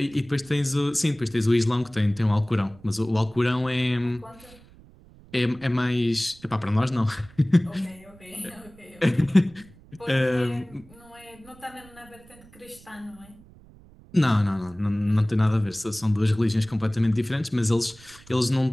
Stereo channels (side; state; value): right; noise; rumble, 24 dB below the sound